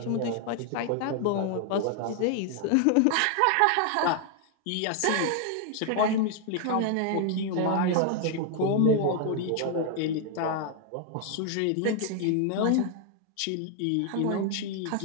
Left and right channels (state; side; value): different; both; correlation 0.00